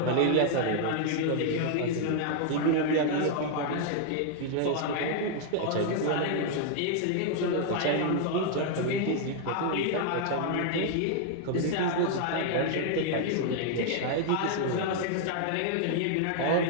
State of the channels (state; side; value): different; both; correlation 0.00